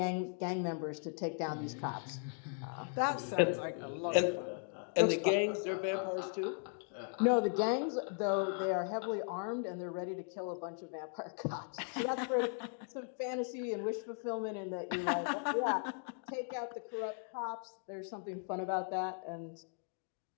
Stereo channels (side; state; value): right; silent; 53 dB below the other